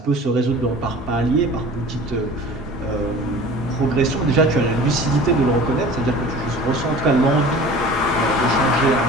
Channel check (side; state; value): both; normal; correlation 0.42